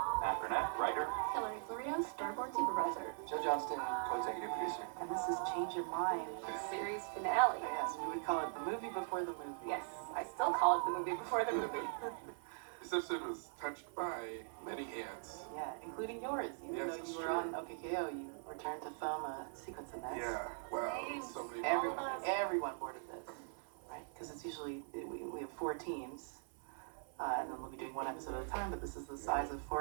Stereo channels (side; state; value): left; silent; 50 dB below the other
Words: Burnett, writer. Hilary Florido, storyboard supervisor. Johnston, co-executive producer. And this is Change Your Mind. Series finale. Yes, we would call it the movie before the movie. Yes, I still call it the movie before the movie. This episode was touched by many hands. Yeah, including yours. Even though you were on OKKO, you returned to film a sequence in this. Yeah, wow, so many Everyone boarded this, right? Because it's usually, we have 4 teams, and then we'll be doing 1 episode at a time, but this is the size of